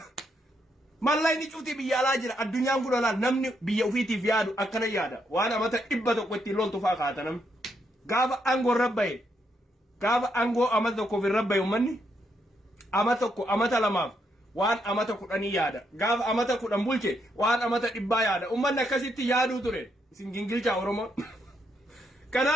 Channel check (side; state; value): both; normal; correlation 0.78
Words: mallayni cufti biyya alaa jira addunyaan kun olaal namni biyya ofiitiif yaadu akkana yaada waan amata 100 ittiin loltu faa kaata namni gaafa angoo rabbaye gaafa angoo amata tokkoof rabbaye ummanni amata tokko amata lamaaf waan amata 10 yaada gaafa amata 10 bulche waan amata 100 yaada ummanni akkasitti yaaduu ture isin gingilchaa Oromoo